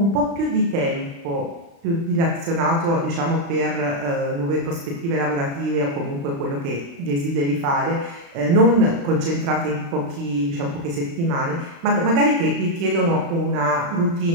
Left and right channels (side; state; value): left; late; 35 ms